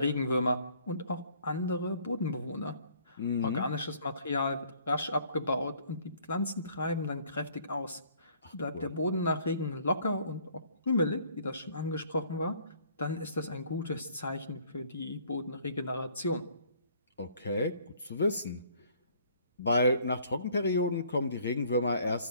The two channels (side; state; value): both; inverted; correlation -0.59